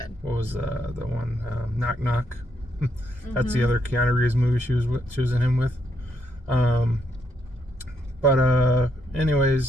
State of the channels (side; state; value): both; normal; correlation 0.76